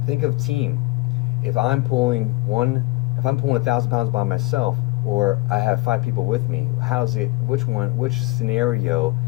Think of team. If I'm pulling 1,000 pounds by myself, or I have 5 people with me, which scenario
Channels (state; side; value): quieter; right; 21.8 dB